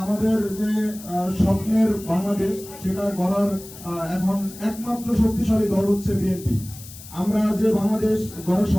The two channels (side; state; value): left; noise; hiss, 16 dB below the sound